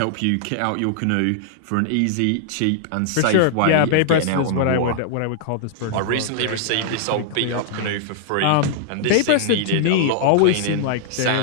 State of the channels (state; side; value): different; both; correlation -0.01